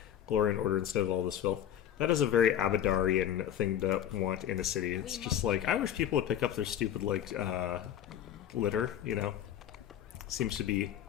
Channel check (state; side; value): quieter; right; 10.4 dB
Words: glory and order instead of all this filth. That is a very Abadarian thing to want in a city. It's just like, I wish people would pick up their stupid, like, litter, you know? Seems to be